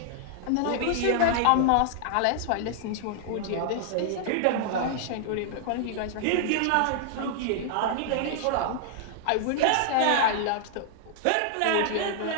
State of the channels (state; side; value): different; both; correlation -0.01